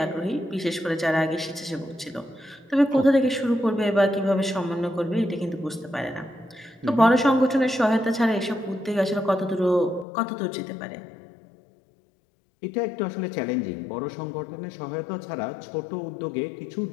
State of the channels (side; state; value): right; drops out; at 10.1 s